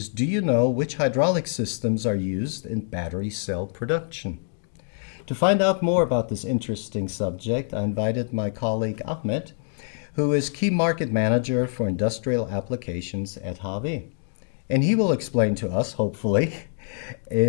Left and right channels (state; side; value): silent; right; 62 dB below the other